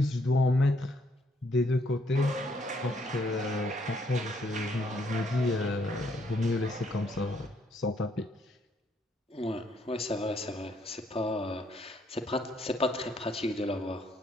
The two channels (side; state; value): both; normal; correlation 0.70